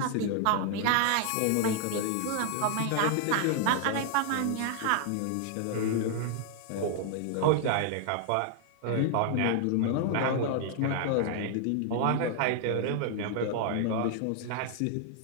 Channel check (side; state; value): both; different; correlation 0.00